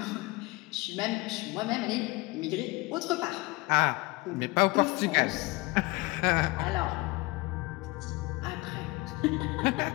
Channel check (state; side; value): quieter; right; 23.2 dB